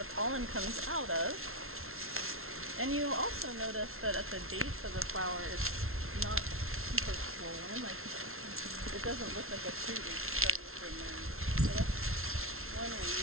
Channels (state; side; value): late; left; 0.62 ms